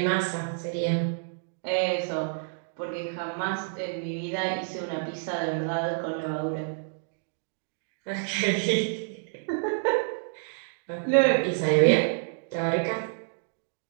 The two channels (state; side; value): silent; left; digital silence